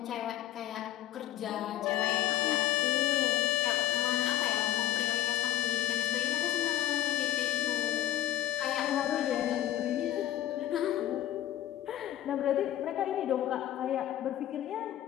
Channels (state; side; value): quieter; right; 12.7 dB